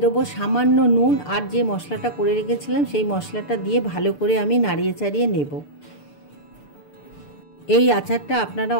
দেবো সামান্য নুন আর যে মশলাটা করে রেখেছিলাম সেই মশলাটা দিয়ে ভালো করে আমি নাড়িয়ে চাড়িয়ে নেব। এই আচারটা আপনারা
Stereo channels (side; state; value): right; late; 6.8 ms